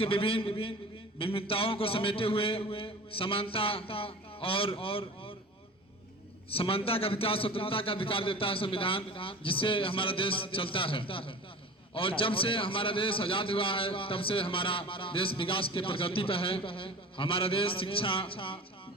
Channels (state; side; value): normal; both; correlation 0.37